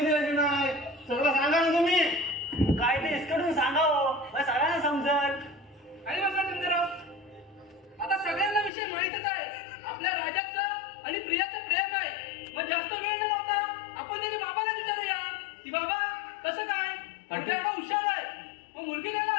नाही सगळं सांगा ना तुम्ही. काय ते इसकडून सांगा हो. सगळ्यांना समजल. आणि बसा शंकरराव आता सगळ्यांना विषय माहितच आहे. आपल्या राजाचं आणि प्रियाचं प्रेम आहे. मग जास्त वेळ न लावता आपण त्याच्या बाबाला विचारूया. मुलगा एवढा हुशार आहे मग मुलगी द्यायला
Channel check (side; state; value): right; drops out; at 8.7 s